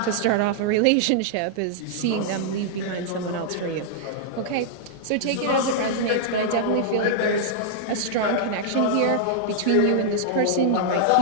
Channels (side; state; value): both; different; correlation -0.01